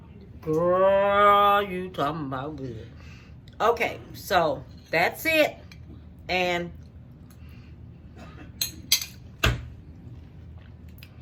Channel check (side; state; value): both; identical; correlation 1.00